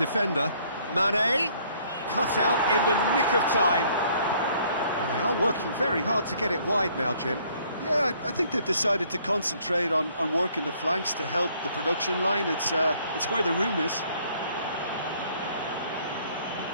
Mane cut out in the nick of time. And they are working very hard to get it wide now, Jim. Yeah, I think they've decided to concentrate on working the flanks to help the production line. It's where the room is.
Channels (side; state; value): both; inverted; correlation -0.62